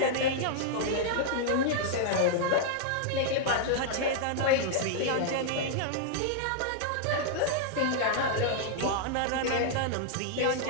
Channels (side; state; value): both; different; correlation -0.01